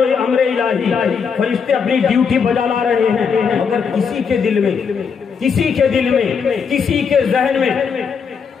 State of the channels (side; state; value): right; quieter; 6.2 dB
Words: الہی فرشتے اپنی ڈیوٹی بجا لا رہے ہیں، مگر کسی کے دل میں، کسی کے ذہن میں